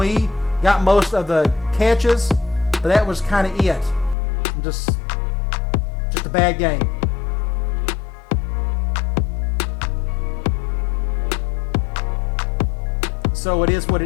got most of the catches, but that was kind of it. Just a bad game. So it is what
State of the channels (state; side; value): drops out; right; at 4.2 s